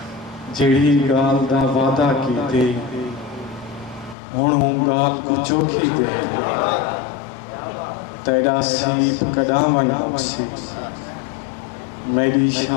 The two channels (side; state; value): right; drops out; at 4.2 s